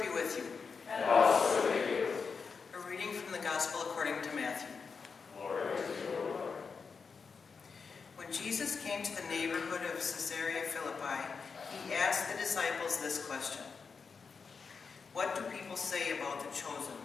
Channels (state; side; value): quieter; right; 5.3 dB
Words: be with you. And also with you. A reading from the Gospel according to Matthew. Glory to you, O Lord. When Jesus came to the neighborhood of Caesarea Philippi, he asked the disciples this question: "What do people say about the chosen